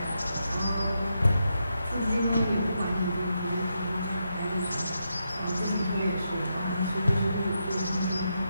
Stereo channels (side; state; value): both; inverted; correlation -0.84